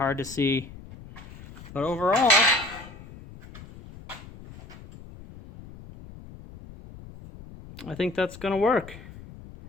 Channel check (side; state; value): left; noise; rumble, 17 dB below the sound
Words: to see. But overall, I think that's going to work.